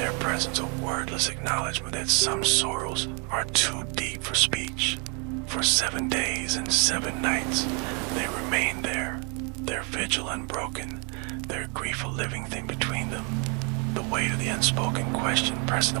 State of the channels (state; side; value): quieter; left; 35.1 dB